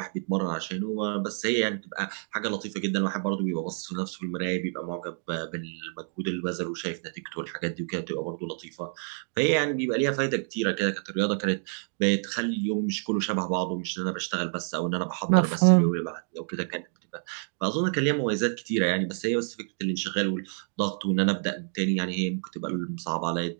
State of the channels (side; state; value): left; silent; 59 dB below the other